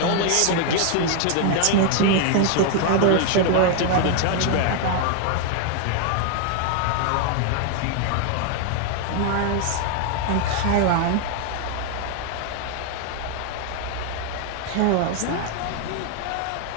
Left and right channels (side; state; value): both; different; correlation 0.00